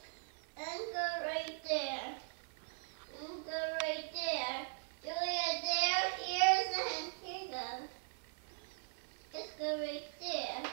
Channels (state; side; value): silent; left; 51 dB below the other